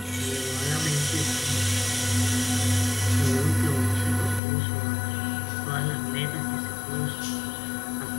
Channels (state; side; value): drops out; right; at 4.4 s